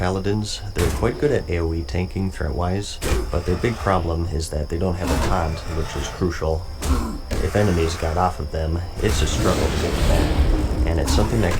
they're quite good at AoE tanking threat-wise, but their big problem is that they don't have a taunt, which is crucial. If enemies got off of them, it's a struggle to get them back, and it's something that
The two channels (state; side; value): identical; both; correlation 1.00